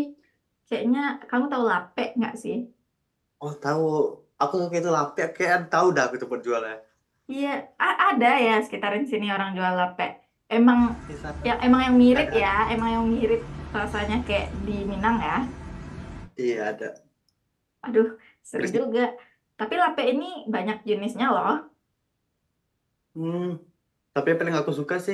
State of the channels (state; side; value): identical; both; correlation 1.00